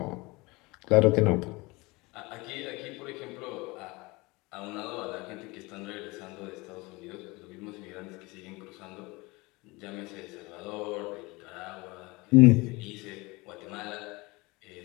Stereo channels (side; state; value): right; quieter; 24.0 dB